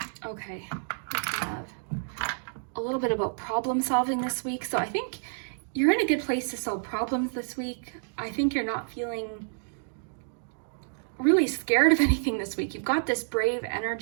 Okay, we have a little bit about problem solving this week. So I think you're in a good place to solve problems this week. I think you're not feeling really scared of anything this week. You've got this brave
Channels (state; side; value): silent; left; digital silence